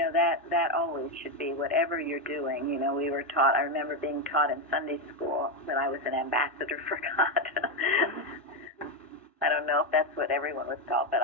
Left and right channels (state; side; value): normal; both; correlation 0.08